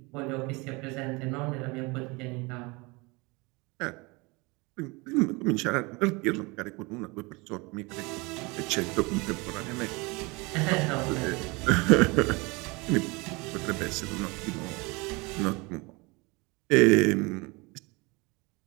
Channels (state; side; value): quieter; left; 26.2 dB